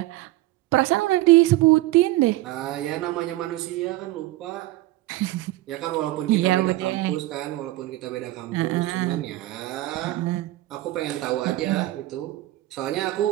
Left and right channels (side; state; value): left; quieter; 17.3 dB